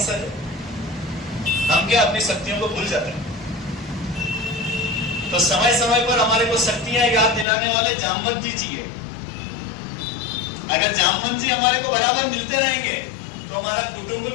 हैं। हम क्या अपनी शक्तियों को भूल जाते हैं? तो समय समय पर हमारे को शक्तियां याद दिलाने वाले जामवंत जी चाहिए। अगर जामवंत जी हमारे को बराबर मिलते रहेंगे तो हमारा कुटुंब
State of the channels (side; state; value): right; drops out; at 7.5 s